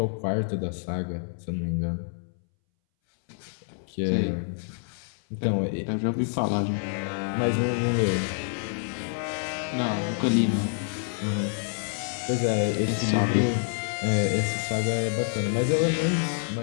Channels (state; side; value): silent; right; 60 dB below the other